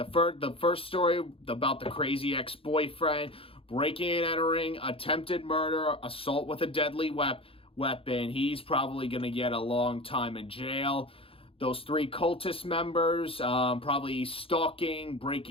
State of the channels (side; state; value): right; late; 0.27 ms